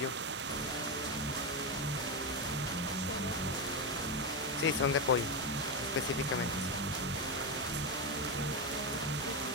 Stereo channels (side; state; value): both; normal; correlation 0.10